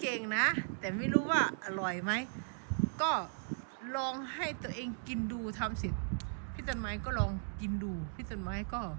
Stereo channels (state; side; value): silent; left; digital silence